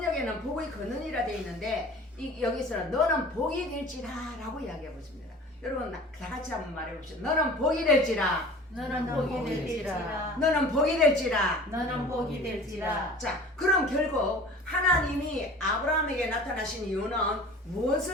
복의 근원이라 되어 있는데 여기서는 너는 복이 될지라 라고 이야기해 보십니다. 여러분 다 같이 한번 말해 봅시다. 너는 복이 될지라. 너는 복이 될지라. 너는 복이 될지라. 너는 복이 될지라. 자, 그럼 결국 하나님이 아브라함에게 나타나신 이유는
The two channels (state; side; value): normal; both; correlation 0.42